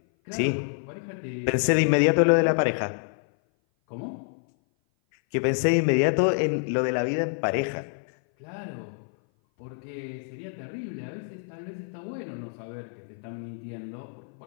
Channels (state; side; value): silent; right; 57 dB below the other